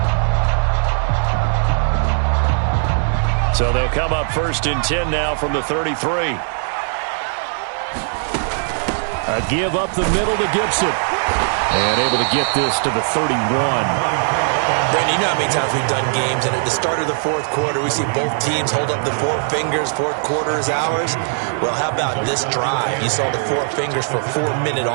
So they'll come up 1st and 10 now from the 33. A give up the middle to Gibson. And able to get this to the 31. Brandon, you know how many times we've done games, and at the start of the 4th quarter, we see both teams hold up the 4 fingers. 4th quarter is ours. Well, how about this drive? You saw the 4 fingers for 4-minute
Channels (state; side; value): silent; left; digital silence